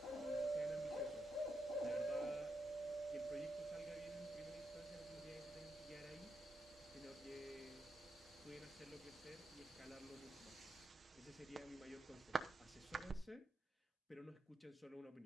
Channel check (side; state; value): both; normal; correlation 0.83